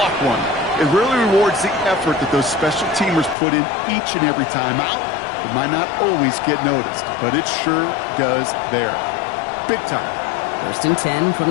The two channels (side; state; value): right; drops out; at 3.4 s